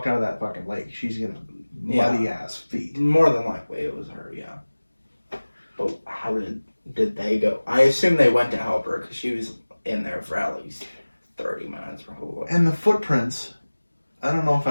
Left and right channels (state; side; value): inverted; both; correlation -1.00